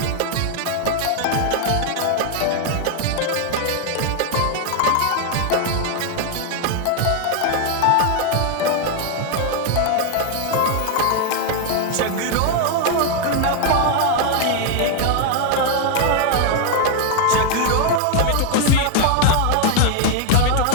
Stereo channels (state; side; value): different; both; correlation 0.00